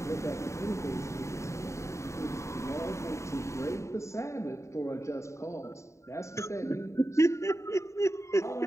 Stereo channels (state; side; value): late; right; 0.14 ms